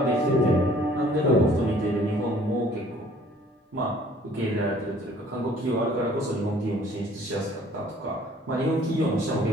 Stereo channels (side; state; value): both; normal; correlation 0.56